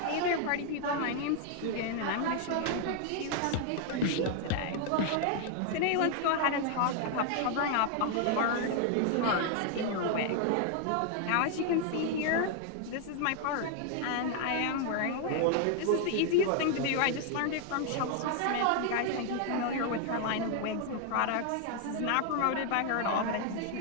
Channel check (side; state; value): both; different; correlation 0.00